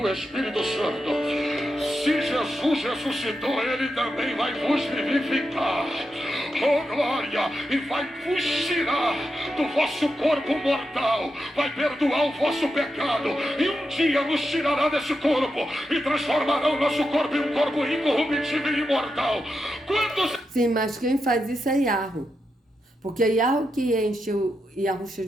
Espírito Santo. Se Jesus ressuscitou, ele também vai vos vivificar. Oh glória! E vai vos tirar do vosso corpo mortal, vai perdoar o vosso pecado, e um dia nos tirará desse corpo e transformará o nosso corpo em um corpo incorruptível e imortal. Quantos... Sim, mas quem faz isso é Yahweh. Porque é Yahweh que enche o Yahusha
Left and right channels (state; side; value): normal; both; correlation 0.86